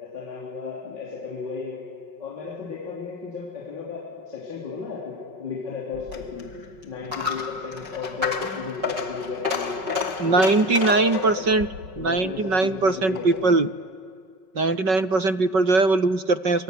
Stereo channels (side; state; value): left; late; 5.4 ms